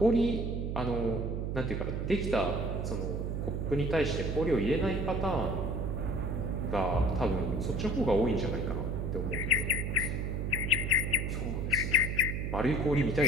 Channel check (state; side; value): noise; right; hum, 2 dB below the sound